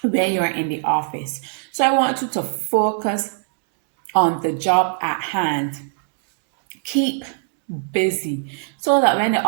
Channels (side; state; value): left; silent; digital silence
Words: when you're in the office. So I want you to focus on the job at hand. Keep busy so that when the